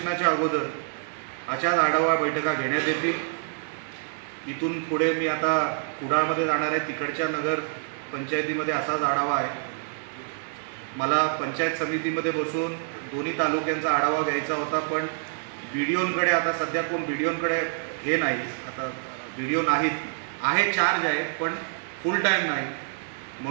अगोदर अशाच आढावा बैठका घेण्यात येतील। इथून पुढे मी आता कुडाळमध्ये जाणार आहे, तिकडच्या नगर पंचायतीमध्ये असाच आढावा आहे। मला पंचायत समितीमध्ये बसून दोन्ही तालुक्यांचा आढावा घ्यायचा होता, पण BDOंकडे आता सध्या कोण BDOंकडे हे नाही, आता BDO नाहीत, आहे चार्ज आहे पण फुल टाईम नाही।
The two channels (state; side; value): silent; left; 58 dB below the other